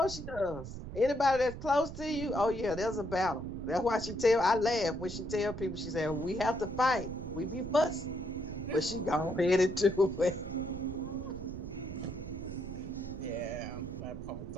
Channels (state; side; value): noise; right; rumble, 10 dB below the sound